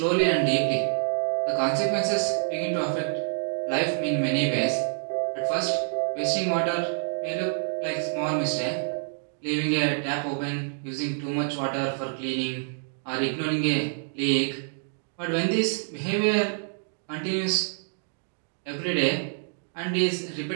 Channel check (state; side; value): silent; left; digital silence